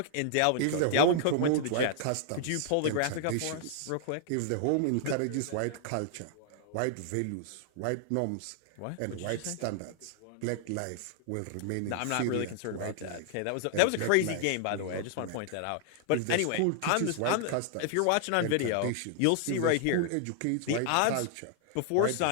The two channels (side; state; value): both; different; correlation -0.01